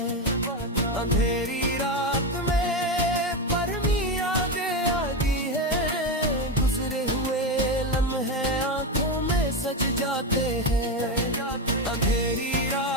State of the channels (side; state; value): both; normal; correlation 0.13